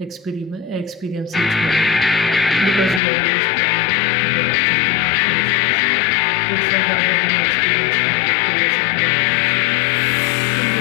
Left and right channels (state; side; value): drops out; right; at 3.0 s